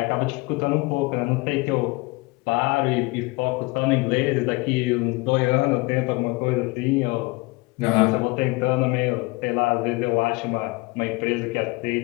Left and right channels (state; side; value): quieter; right; 24.7 dB